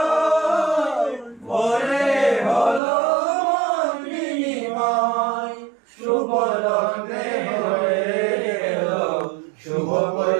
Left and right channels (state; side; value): drops out; left; at 2.8 s